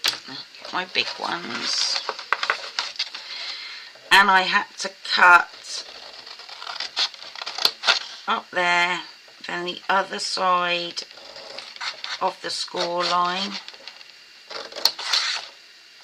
my big ones. And I had to cut up there, then the other side of the score line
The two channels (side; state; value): both; identical; correlation 1.00